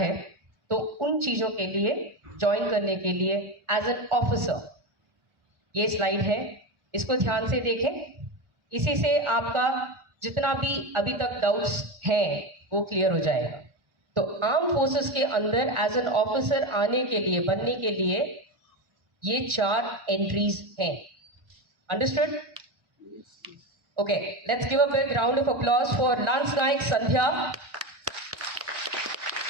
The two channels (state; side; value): late; left; 1.1 ms